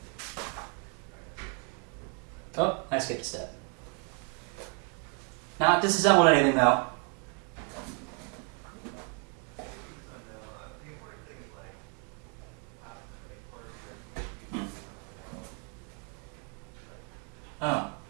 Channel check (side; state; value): left; quieter; 38.4 dB